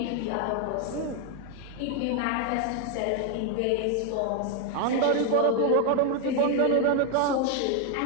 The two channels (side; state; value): both; different; correlation 0.01